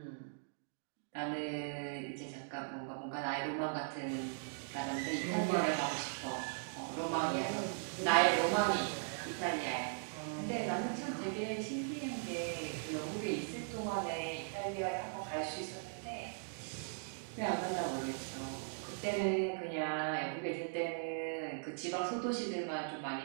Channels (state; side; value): silent; left; digital silence